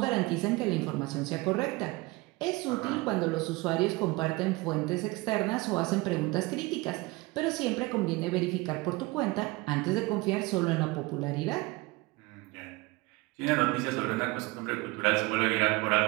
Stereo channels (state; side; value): quieter; left; 22.9 dB